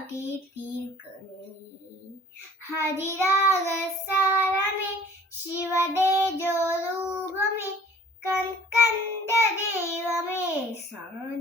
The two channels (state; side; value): normal; both; correlation 0.51